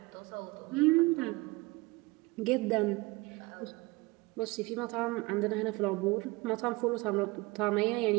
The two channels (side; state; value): left; quieter; 23.6 dB